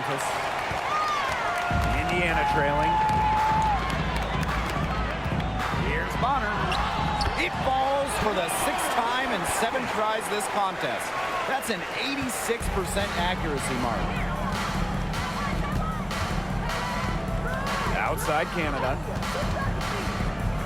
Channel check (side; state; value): both; identical; correlation 1.00